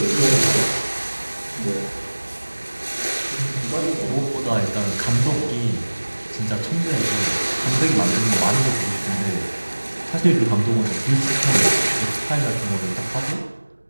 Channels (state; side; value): inverted; both; correlation -1.00